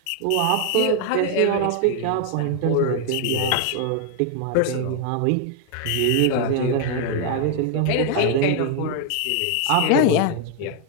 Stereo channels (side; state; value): both; different; correlation 0.00